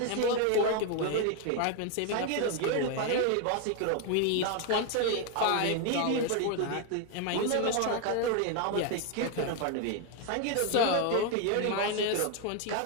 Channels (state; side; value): different; both; correlation 0.01